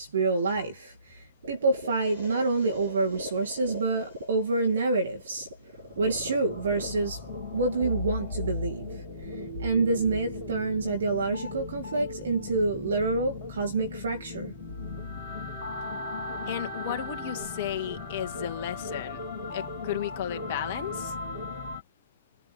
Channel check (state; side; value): inverted; both; correlation -0.60